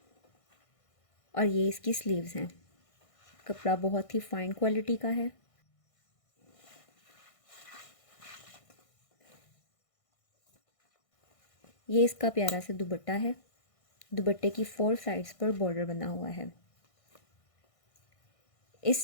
और ये इसकी स्लीव्स हैं। कपड़ा बहुत ही फाइन क्वालिटी का है। ये इसका प्यारा सा दुपट्टा है। दुपट्टे की 4 साइड्स पर बॉर्डर बना हुआ है।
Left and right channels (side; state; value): right; late; 1.6 ms